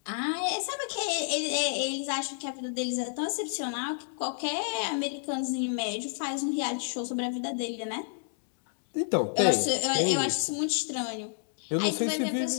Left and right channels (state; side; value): silent; right; digital silence